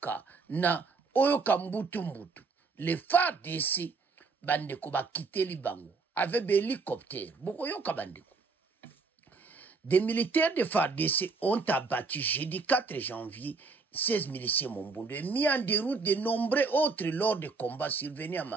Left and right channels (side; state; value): left; quieter; 4.3 dB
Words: na oyo kambutu mbutu. Les FARDC bandeko ba kiteli bango avec des hélicoptères. Boko yoka bandeko. Des militaires de FARDC ont abattu jeudi 4 janvier 16 miliciens mombondo et mis en déroute de nombreux autres lors de combats survenus à